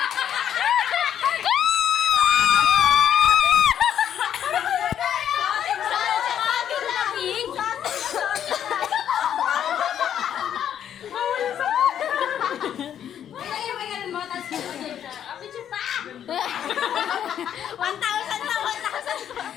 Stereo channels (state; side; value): quieter; right; 9.6 dB